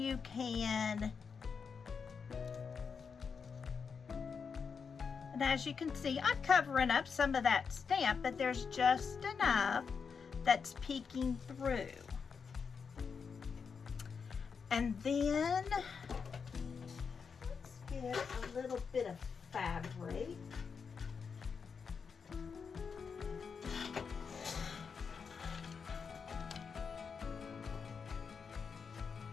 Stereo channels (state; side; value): quieter; right; 5.9 dB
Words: can, and as you can see, I'm covering up some of that stamp, but there's just enough that's peeking through. And then, let's get a little bit of fabric.